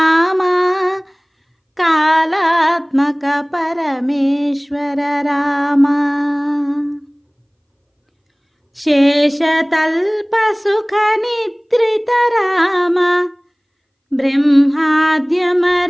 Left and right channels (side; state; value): both; identical; correlation 1.00